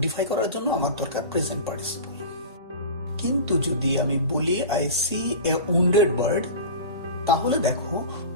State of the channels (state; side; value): inverted; both; correlation -0.32